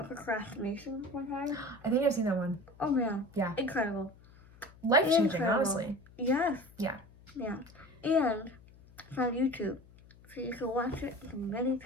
procrastination one time. I think I've seen that one. Oh man. Yeah. Incredible. life-changing, Incredible. honestly. Yes. Yeah. Yeah. And it's on YouTube, so you can watch it as many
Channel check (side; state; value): left; noise; hum, 24 dB below the sound